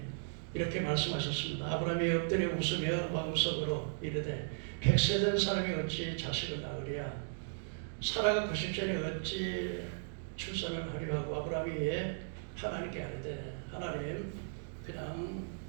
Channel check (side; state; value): left; silent; digital silence